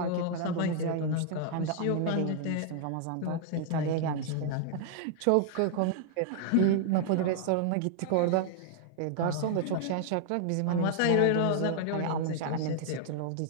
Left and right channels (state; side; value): different; both; correlation -0.01